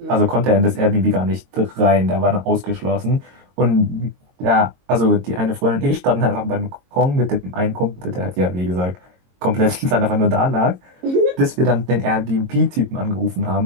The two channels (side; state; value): left; late; 22 ms